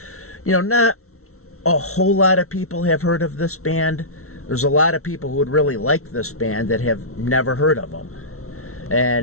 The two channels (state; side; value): late; right; 0.63 ms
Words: not a whole lot of people have heard of this band. There's a lot of people who would really like this band that have never heard of them.